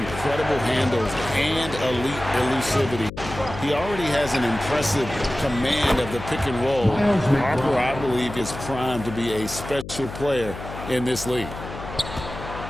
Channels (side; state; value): left; noise; hum, 11 dB below the sound